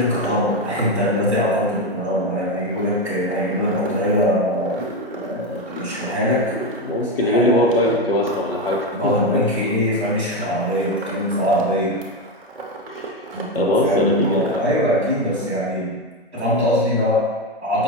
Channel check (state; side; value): normal; both; correlation 0.12